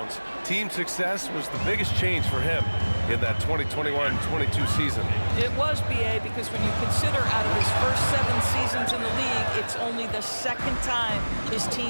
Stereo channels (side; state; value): both; inverted; correlation -1.00